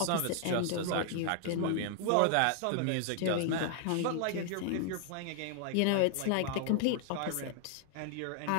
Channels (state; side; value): different; both; correlation 0.00